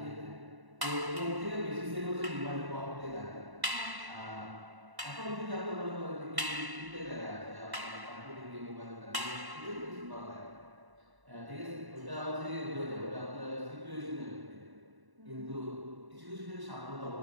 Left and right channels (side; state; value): left; late; 1.1 ms